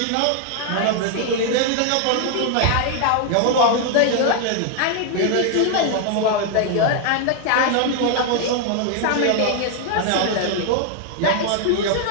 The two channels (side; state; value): both; different; correlation 0.00